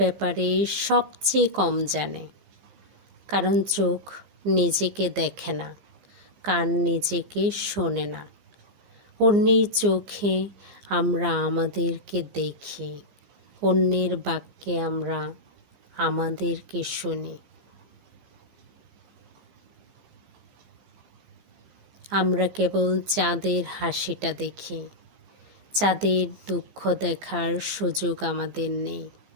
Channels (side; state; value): left; late; 15 ms